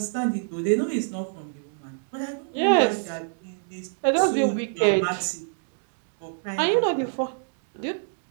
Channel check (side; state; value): left; silent; digital silence